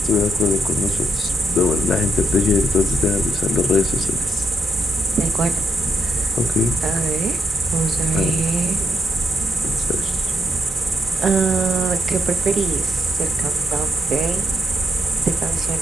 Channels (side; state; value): both; normal; correlation 0.80